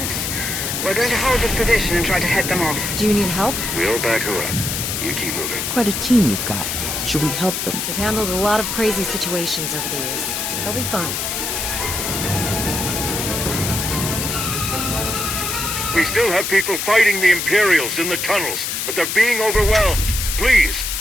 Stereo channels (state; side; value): noise; left; hiss, 2 dB below the sound